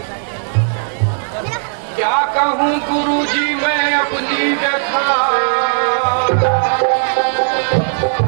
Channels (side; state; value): left; silent; digital silence